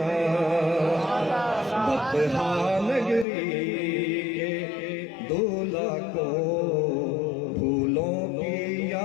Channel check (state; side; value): drops out; right; at 3.2 s